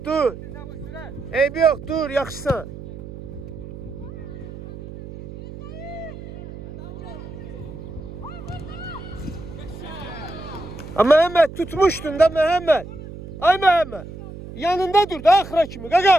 dur. Eybi yox, dur, yaxşısan. Məhəmməd, tutmuşdun da Məhəmməd. Ay Məhəmməd, yanında dur da axıra kimi,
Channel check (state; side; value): noise; right; hum, 12 dB below the sound